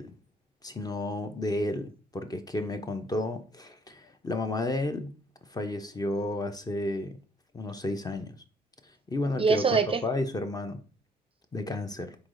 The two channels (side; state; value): both; normal; correlation 0.64